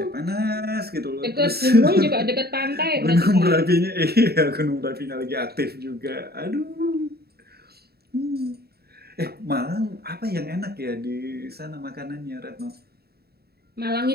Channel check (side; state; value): left; late; 0.46 ms